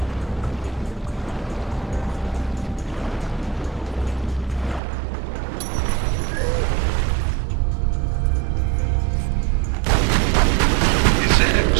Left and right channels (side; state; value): left; drops out; at 4.8 s